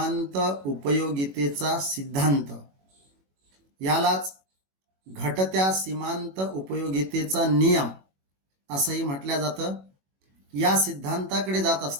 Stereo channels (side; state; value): left; late; 21 ms